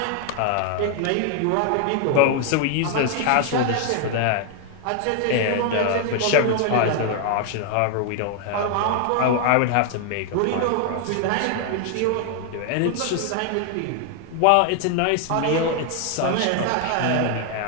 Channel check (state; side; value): different; both; correlation 0.00